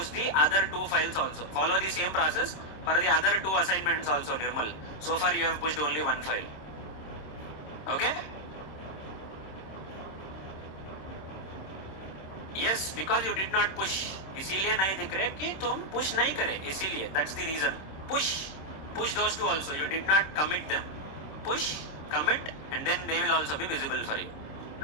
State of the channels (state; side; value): late; right; 26 ms